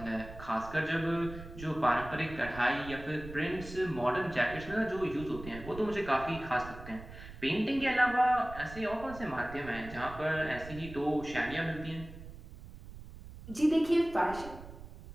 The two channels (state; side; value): noise; right; rumble, 14 dB below the sound